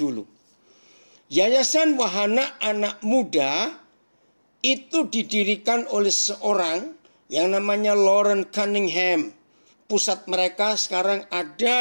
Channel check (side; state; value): both; inverted; correlation -1.00